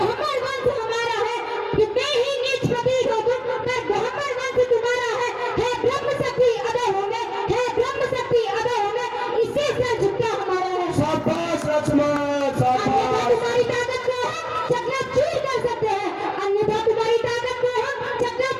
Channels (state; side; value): identical; both; correlation 1.00